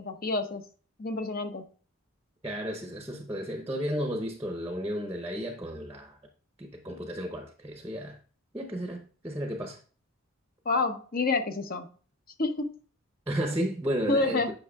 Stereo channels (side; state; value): both; normal; correlation 0.34